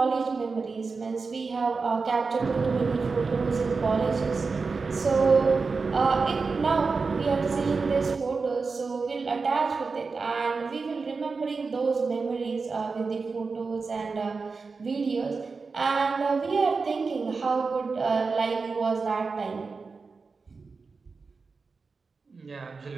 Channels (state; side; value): quieter; left; 4.5 dB